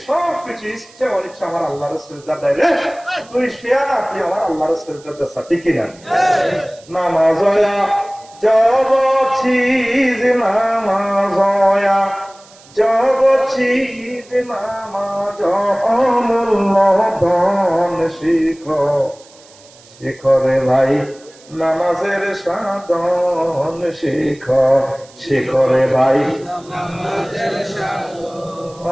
সবকিছু ইচ্ছা অনিচ্ছা আমার আল্লাহর সেজদা দেয় রে। তুই শেয়া না তুই আমার আল্লাহর সেজদা দেছা ঠিক কিনা। নামাজয়া জব চিজ নামাজয়া জব চিজ নামাজ অমূল্য ধন শিখ শিখরে ভাই নামাজের সাধন শিখ শিখরে ভাই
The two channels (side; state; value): right; noise; hiss, 25 dB below the sound